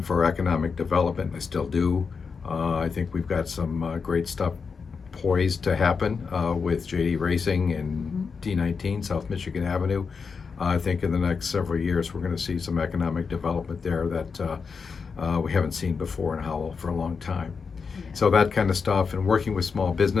for economic development, and I still do. I think we've got some great stuff poised to happen with JD Racing and D19, South Michigan Avenue. I think in the next several years we're going to see some economic development there that we haven't seen before in Howell for a long time. So that kind of stuff, and working with small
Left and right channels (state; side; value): quieter; right; 5.4 dB